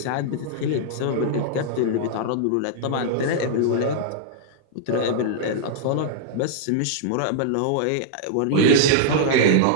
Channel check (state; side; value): different; both; correlation -0.01